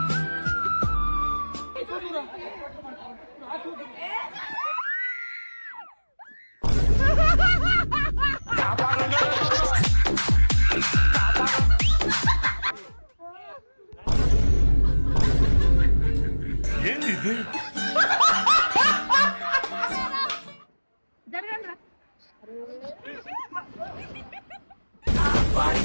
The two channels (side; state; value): both; inverted; correlation -1.00